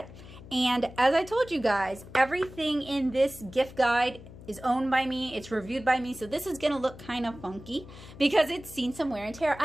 And as I told you guys, everything in this gift guide is owned by me, it's reviewed by me, so this is gonna look kind of funky because it's seen some wear and tear.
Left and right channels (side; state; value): left; noise; hum, 17 dB below the sound